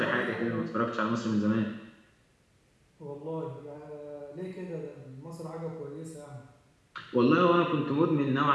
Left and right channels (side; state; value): both; identical; correlation 1.00